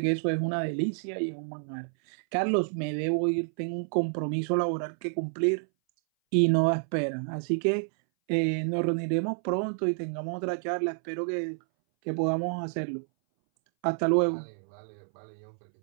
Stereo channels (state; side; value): silent; left; 59 dB below the other